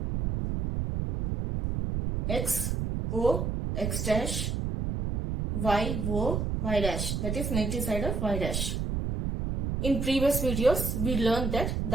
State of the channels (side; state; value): right; noise; rumble, 1 dB below the sound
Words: x, O, x dash, y, O, y dash. That is negative side of y dash. In previous videos, we learned that